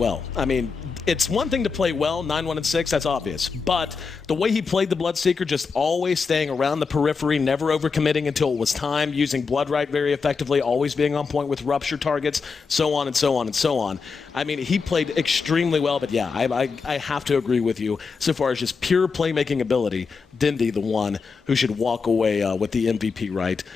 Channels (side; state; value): right; quieter; 5.0 dB